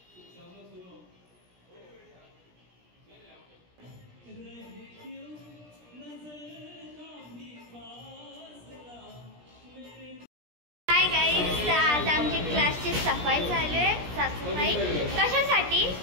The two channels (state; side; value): late; left; 17 ms